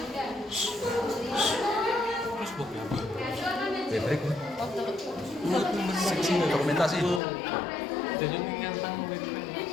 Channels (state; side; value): drops out; right; at 7.2 s